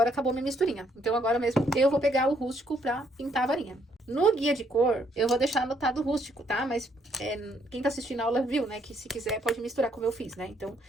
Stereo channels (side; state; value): both; normal; correlation 0.70